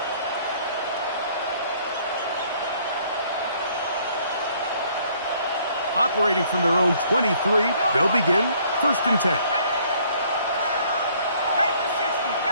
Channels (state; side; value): inverted; both; correlation -0.61